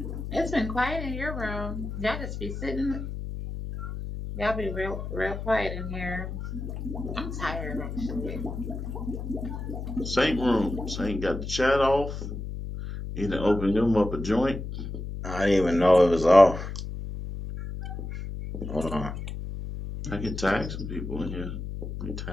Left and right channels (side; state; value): left; noise; hum, 6 dB below the sound